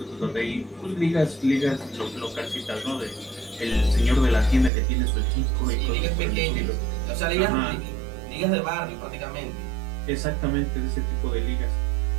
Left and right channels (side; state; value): left; drops out; at 4.7 s